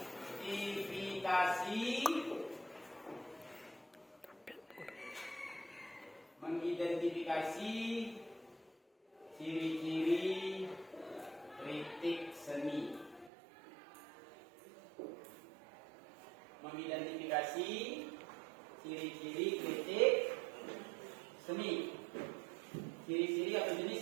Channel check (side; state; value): left; drops out; at 13.3 s